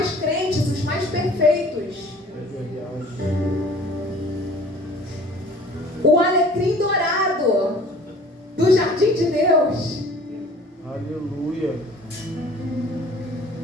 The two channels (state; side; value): normal; both; correlation 0.49